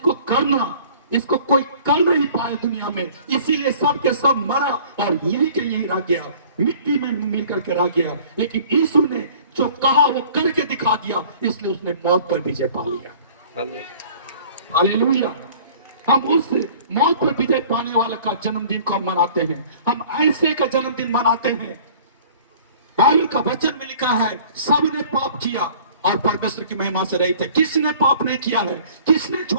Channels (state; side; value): inverted; both; correlation -0.50